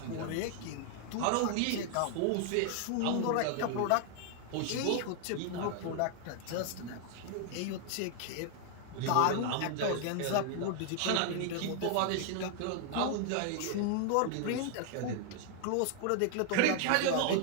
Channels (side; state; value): both; different; correlation 0.00